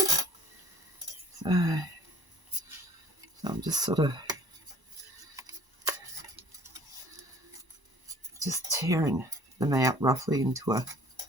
So I'm just sort of just tearing them out roughly into a,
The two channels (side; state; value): left; late; 1.0 ms